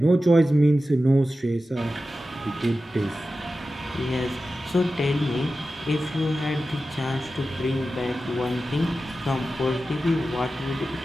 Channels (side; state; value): both; normal; correlation 0.93